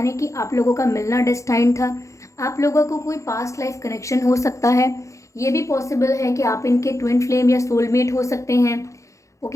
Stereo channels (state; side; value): late; right; 0.15 ms